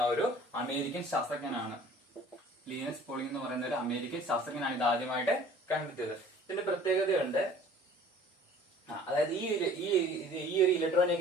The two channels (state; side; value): normal; both; correlation 0.49